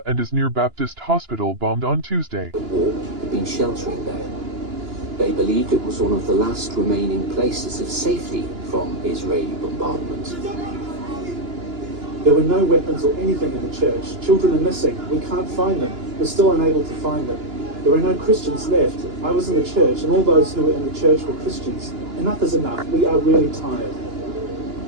and is near Baptist Hospital bombed on Tuesday. The war had been sheltering there. They believed it was one of the last remaining places of safety from Israeli bombardment. There were no weapons or anything in the church. Children are missing. We can't find them. We're still unable to find them. There are no Christians left. I was in the church, and all those who were in the church were Christians. Enough is enough. We are really tired.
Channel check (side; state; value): left; late; 2.9 ms